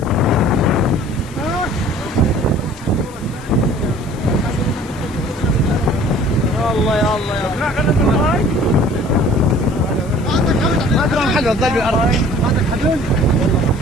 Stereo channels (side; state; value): left; noise; hiss, 23 dB below the sound